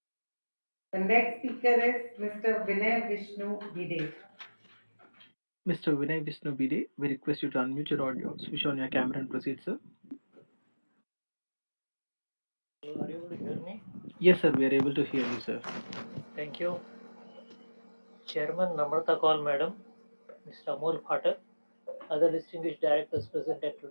The next speaker is Mr. Vinay Vishnu Bide. Mr. Vinay Vishnu Bide, we request you to unmute your audio, switch on your camera and proceed, sir. Are you able to hear me? Yes, sir, we are able to hear you, sir. Thank you. Chairman Namrata Kaul Madam, Mr. Amol Phatak, other distinguished directors present at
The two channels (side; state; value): both; inverted; correlation -1.00